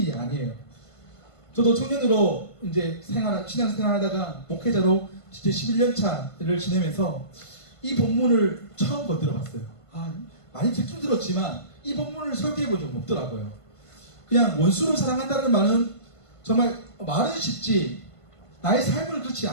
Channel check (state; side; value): late; right; 1.5 ms